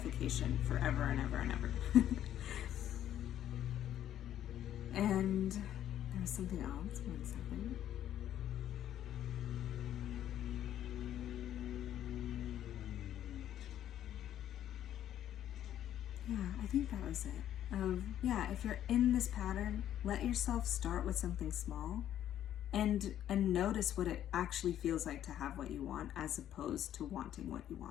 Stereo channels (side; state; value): right; quieter; 11.2 dB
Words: forever and ever and ever. And there was something else. 1 second. Yeah, I think that was it. If you're in this pattern, let yourself start with something small and notice what it actually feels like to have what you want, as opposed to wanting what you